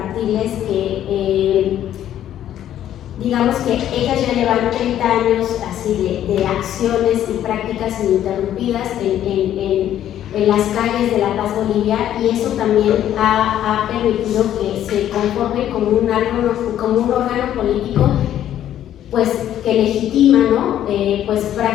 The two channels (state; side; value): quieter; right; 11.3 dB